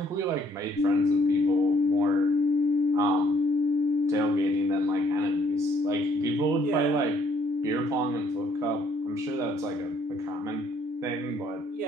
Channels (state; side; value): normal; both; correlation 0.65